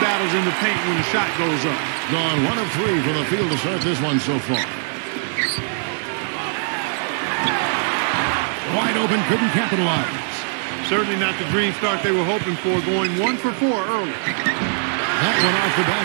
battles in the paint when the shot goes up. Gone 1 of 3 for the field to start this one so far. Wide open, couldn't capitalize. Certainly not the dream start they were hoping for, going 1 for 4 early. That one off the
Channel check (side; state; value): left; silent; 65 dB below the other